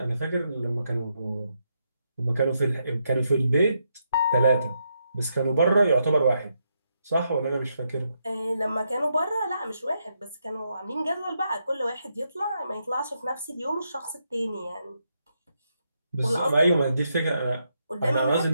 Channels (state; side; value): inverted; both; correlation -0.80